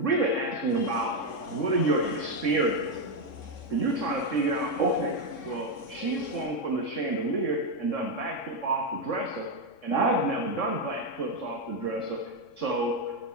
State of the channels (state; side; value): late; right; 3.6 ms